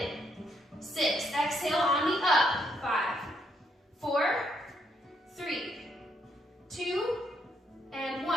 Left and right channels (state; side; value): normal; both; correlation 0.74